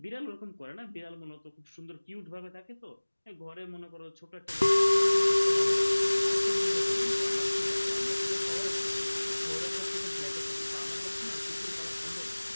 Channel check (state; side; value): inverted; both; correlation -1.00